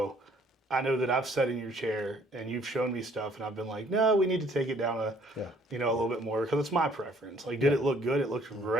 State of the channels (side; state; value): both; normal; correlation 0.61